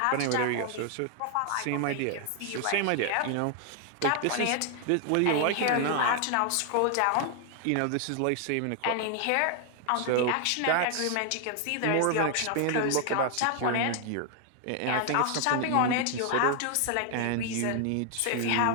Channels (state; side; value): different; both; correlation 0.00